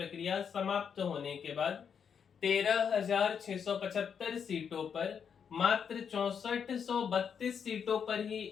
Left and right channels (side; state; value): right; quieter; 7.2 dB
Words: समाप्त होने के बाद 13,675 सीटों पर मात्र 6432 सीटों पर ही